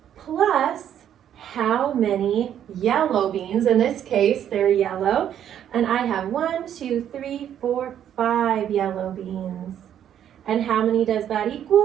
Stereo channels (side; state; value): left; quieter; 10.0 dB